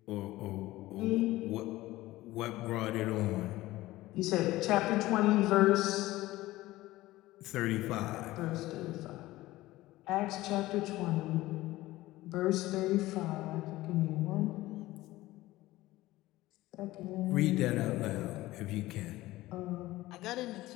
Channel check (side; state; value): right; quieter; 17.4 dB